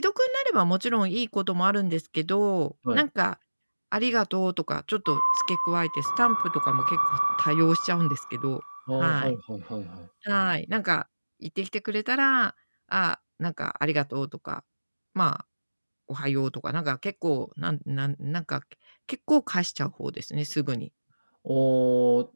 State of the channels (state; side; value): inverted; both; correlation -1.00